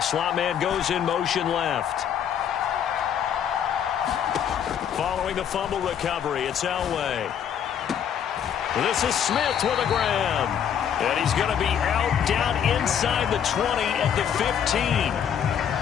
slot man goes in motion left. Following the fumble recovery, it's Elway. This is Smith with a grab. And he's going to be out down inside the 20 at the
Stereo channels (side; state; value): right; quieter; 8.7 dB